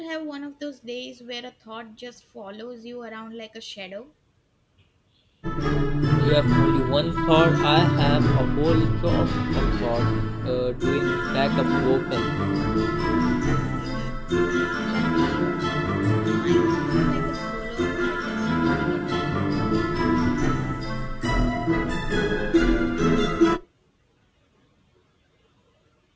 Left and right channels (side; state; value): both; identical; correlation 1.00